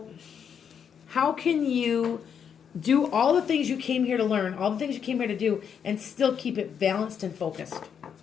how can you do all the things you came here to learn, all the things you came here to do, and still keep it balanced and focused,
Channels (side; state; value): right; quieter; 7.6 dB